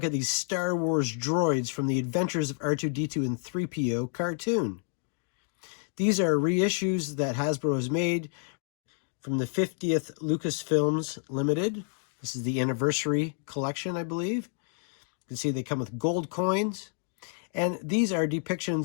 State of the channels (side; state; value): right; silent; 58 dB below the other